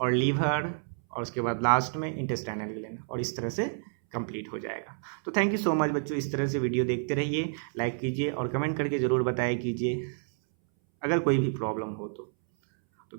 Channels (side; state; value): left; silent; 58 dB below the other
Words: लीवर और उसके बाद लास्ट में इंटेस्टाइनल ग्लैंड, और इस तरह से कंप्लीट हो जाएगा। तो थैंक यू सो मच बच्चों, इस तरह से वीडियो देखते रहिए, लाइक कीजिए और कमेंट करके ज़रूर बताया कीजिए अगर कोई भी प्रॉब्लम हो तो